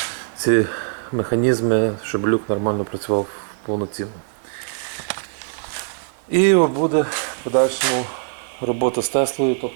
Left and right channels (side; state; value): left; silent; digital silence